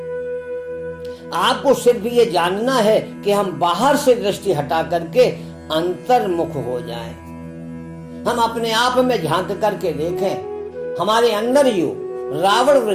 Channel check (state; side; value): identical; both; correlation 1.00